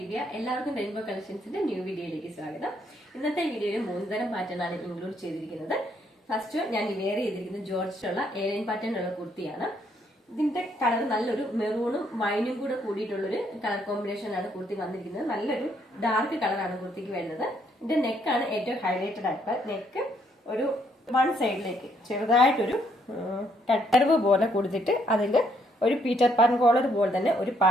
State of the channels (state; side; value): normal; both; correlation 0.70